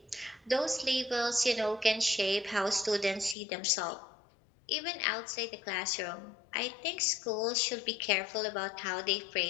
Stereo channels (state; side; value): drops out; right; at 3.4 s